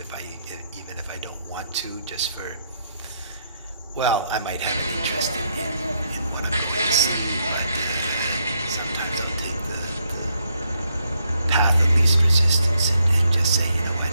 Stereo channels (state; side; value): inverted; both; correlation -0.76